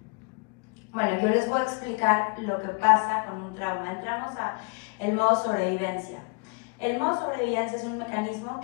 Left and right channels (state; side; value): quieter; right; 33.4 dB